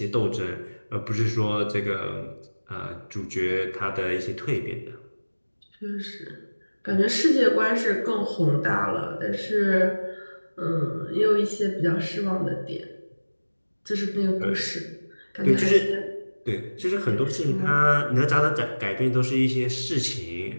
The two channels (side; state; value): both; inverted; correlation -1.00